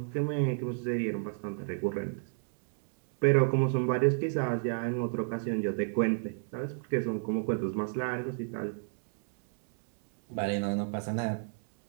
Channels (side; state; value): left; silent; digital silence